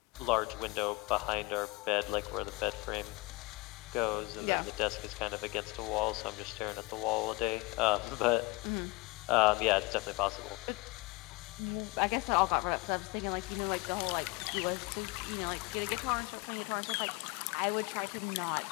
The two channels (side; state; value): right; quieter; 24.0 dB